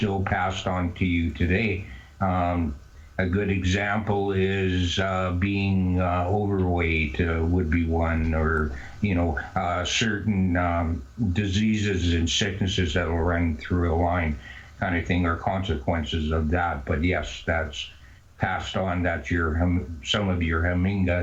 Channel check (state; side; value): identical; both; correlation 1.00